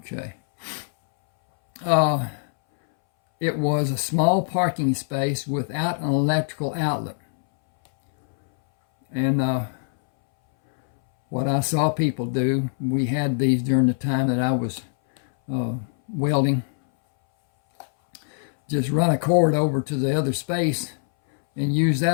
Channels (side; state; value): right; silent; 61 dB below the other